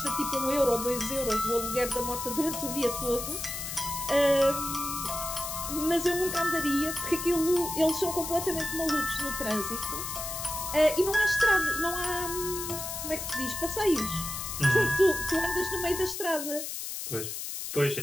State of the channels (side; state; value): left; noise; hiss, 6 dB below the sound